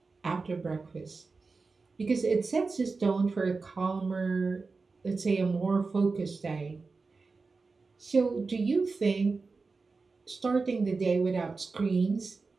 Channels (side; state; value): left; quieter; 4.2 dB